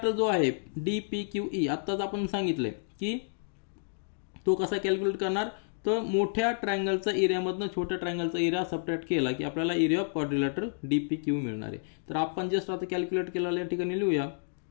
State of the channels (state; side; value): silent; right; digital silence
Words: जो आहे DPQE आत्ताच आपण सांगितलंय की तो कसा कॅल्क्युलेट करणार तर मोठ्या ट्रायंगलचा एरियामधनं छोट्या ट्रायंगलचा एरिया सबट्रॅक्ट केला की आपल्याला एरिया ऑफ क्वाड्रिलॅटरल DPQ मिळणार आहे. तर आपण जस्ट आता कॅल्क्युलेट केलेला या ठिकाणी लिहूया